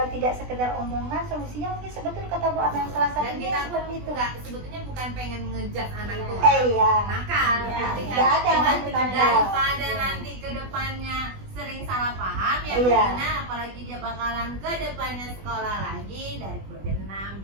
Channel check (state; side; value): late; left; 20 ms